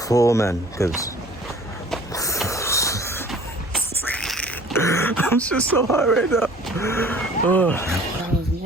full, man, because I'm just so hot right now. Oh. That was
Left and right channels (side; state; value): both; normal; correlation 0.49